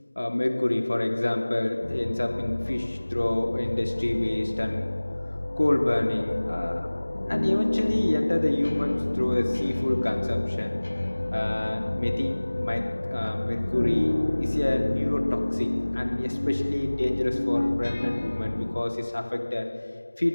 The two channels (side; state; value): both; inverted; correlation -1.00